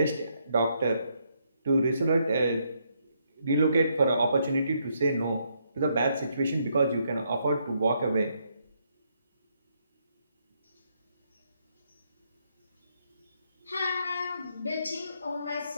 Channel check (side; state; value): both; inverted; correlation -0.75